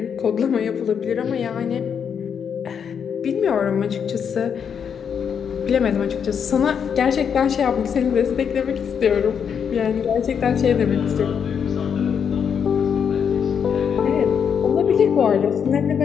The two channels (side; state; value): right; quieter; 7.4 dB